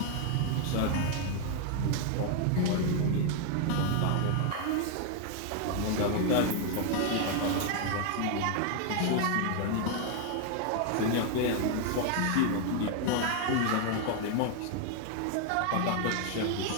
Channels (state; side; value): different; both; correlation 0.00